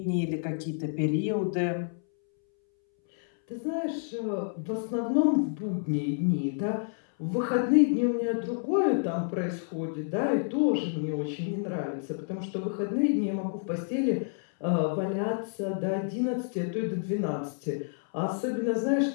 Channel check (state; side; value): silent; right; 59 dB below the other